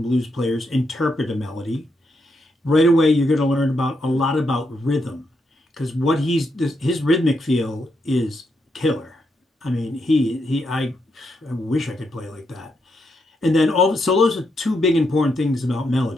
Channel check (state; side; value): normal; both; correlation 0.81